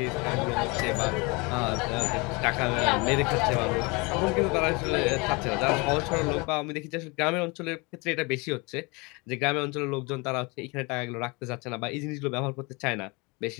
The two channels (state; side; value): quieter; right; 27.7 dB